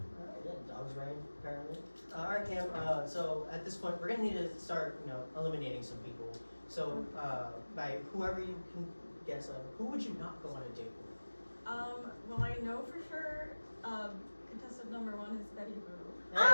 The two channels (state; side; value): inverted; both; correlation -1.00